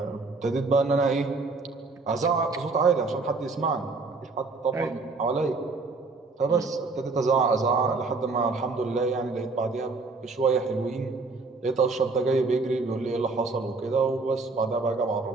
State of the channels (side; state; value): left; quieter; 3.9 dB